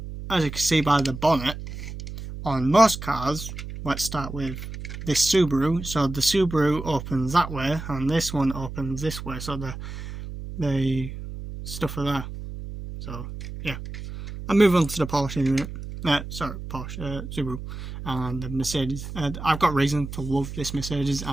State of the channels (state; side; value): noise; right; hum, 9 dB below the sound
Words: As you can see by the bonnet, on most cars, let's start with this Subaru. So the Subaru opens that way, and this one opens this way. So the stuff are there. So yeah, I'll move on to the Porsche in a minute. Porsche, Subaru, and the Mercedes. I've got reason to love this Mercedes